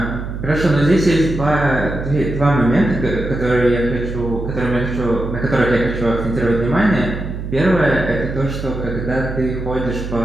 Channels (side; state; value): right; noise; hum, 7 dB below the sound